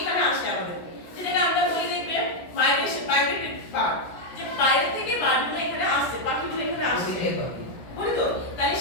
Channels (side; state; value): right; late; 17 ms